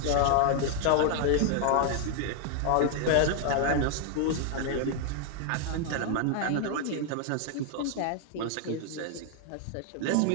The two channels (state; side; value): different; both; correlation 0.00